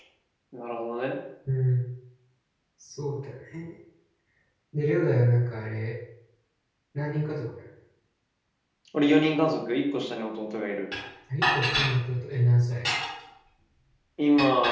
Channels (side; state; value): both; identical; correlation 1.00